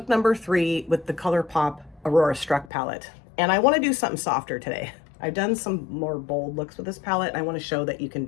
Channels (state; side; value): drops out; right; at 2.7 s